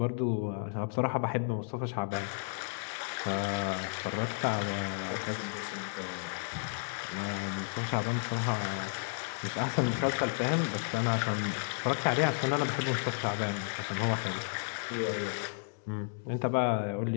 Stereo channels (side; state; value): right; silent; digital silence